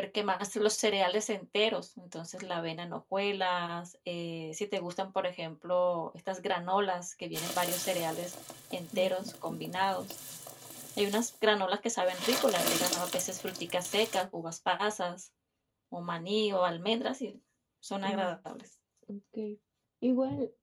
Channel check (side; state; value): both; identical; correlation 1.00